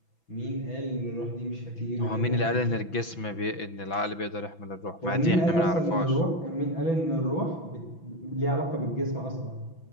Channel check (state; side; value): late; right; 6.0 ms